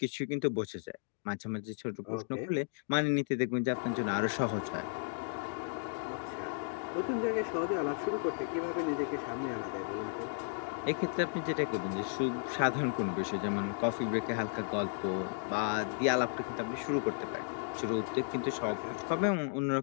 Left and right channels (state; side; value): silent; right; digital silence